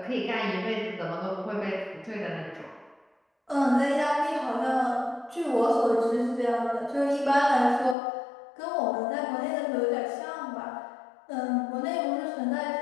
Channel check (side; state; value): right; drops out; at 8.0 s